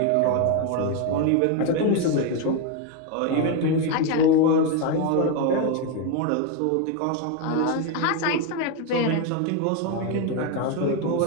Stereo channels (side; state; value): both; different; correlation 0.02